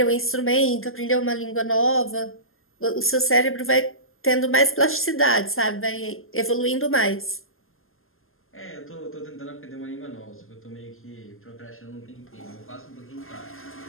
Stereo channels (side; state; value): right; late; 0.61 ms